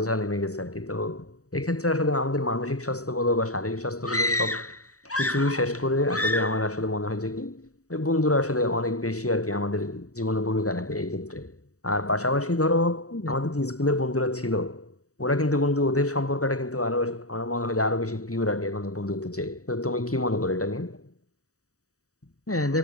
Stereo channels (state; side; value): late; right; 0.66 ms